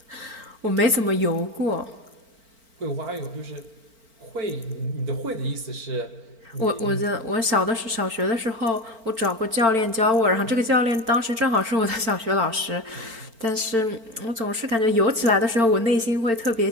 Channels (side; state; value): left; late; 4.4 ms